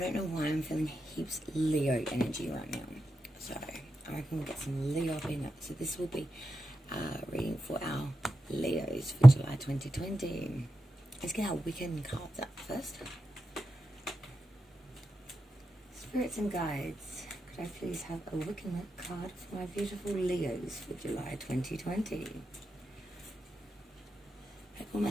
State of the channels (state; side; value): normal; both; correlation 0.90